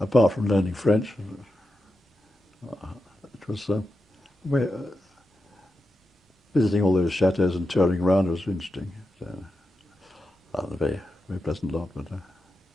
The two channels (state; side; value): normal; both; correlation 0.89